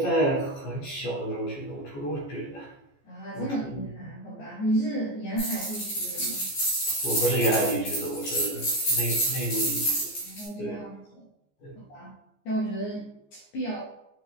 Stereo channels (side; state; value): right; late; 14 ms